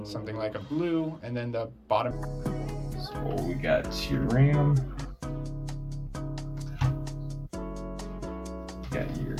something like a blue, and then the bottom. So we got your RAM, got your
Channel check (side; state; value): both; identical; correlation 1.00